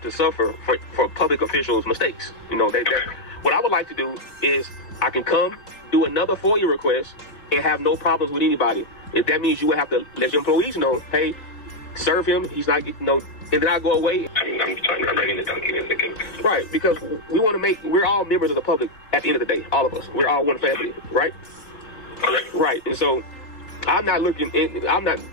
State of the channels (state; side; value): late; right; 3.9 ms